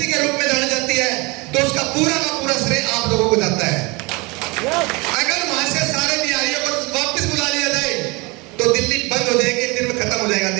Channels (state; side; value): quieter; left; 26.5 dB